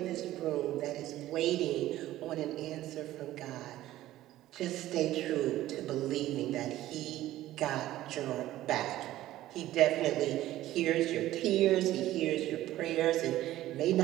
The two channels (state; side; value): quieter; left; 14.7 dB